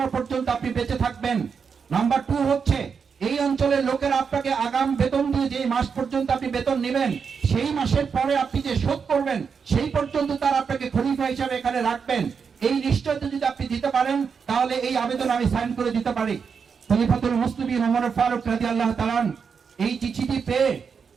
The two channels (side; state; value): left; quieter; 6.1 dB